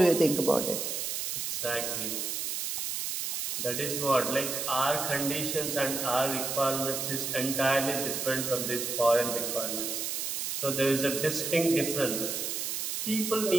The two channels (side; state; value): right; noise; hiss, 2 dB below the sound